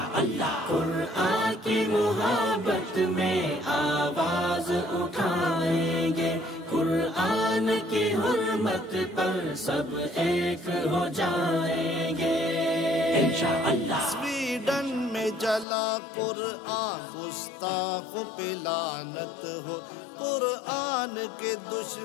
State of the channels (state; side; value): drops out; right; at 15.7 s